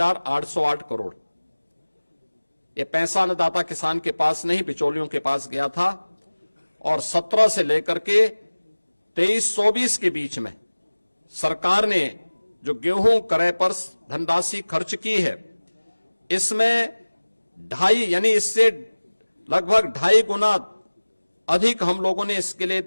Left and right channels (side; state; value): both; inverted; correlation -1.00